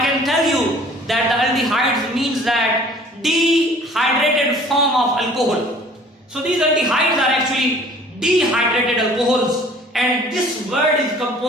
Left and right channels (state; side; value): normal; both; correlation 0.51